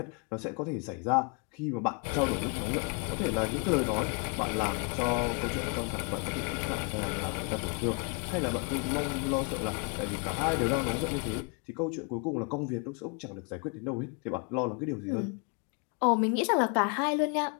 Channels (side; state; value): right; quieter; 36.2 dB